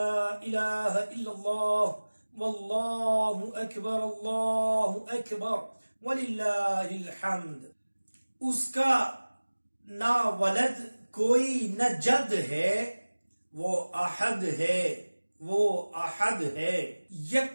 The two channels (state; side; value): inverted; both; correlation -1.00